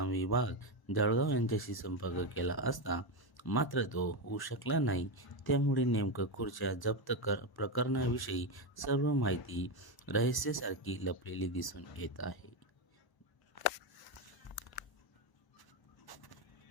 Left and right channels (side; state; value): right; late; 1.0 ms